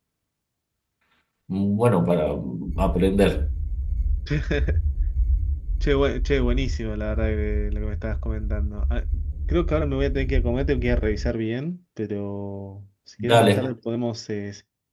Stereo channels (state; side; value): identical; both; correlation 1.00